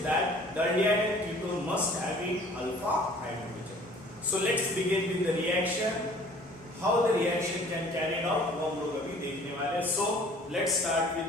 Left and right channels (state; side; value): normal; both; correlation 0.52